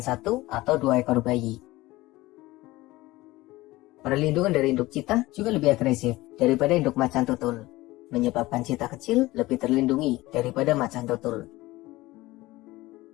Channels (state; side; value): quieter; right; 18.9 dB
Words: 1 atau 2 ekor bayi. Perlindungan dari induk Cheetah juga lebih agresif daripada induk macan tutul, menyebabkan Cheetah kecil lebih terlindungi daripada macan tutul.